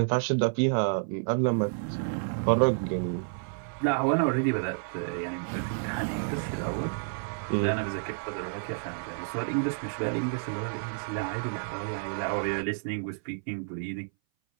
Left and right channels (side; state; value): left; silent; 58 dB below the other